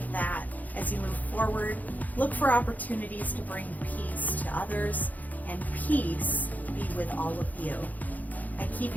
that as you move forward. Look for opportunities to bring peace to others, and peace be with all of you. I keep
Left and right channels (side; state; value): right; late; 0.080 ms